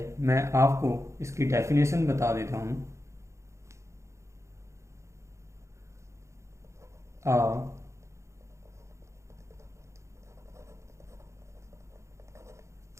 मैं आपको इसकी डेफिनेशन बता देता हूँ। A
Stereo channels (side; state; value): left; late; 0.14 ms